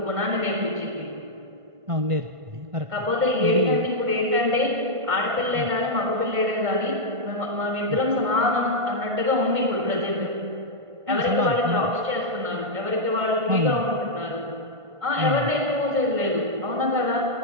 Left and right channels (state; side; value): late; left; 1.5 ms